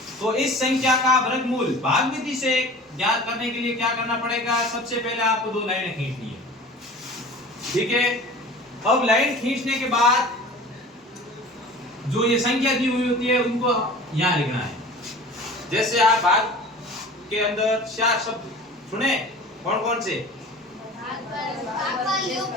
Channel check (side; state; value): both; normal; correlation 0.41